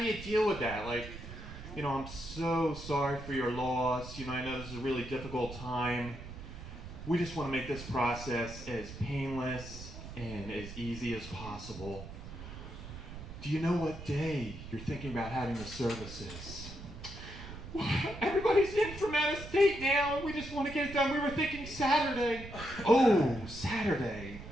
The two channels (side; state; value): right; noise; rumble, 12 dB below the sound